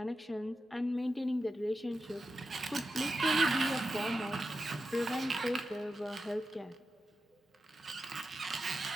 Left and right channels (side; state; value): both; normal; correlation 0.90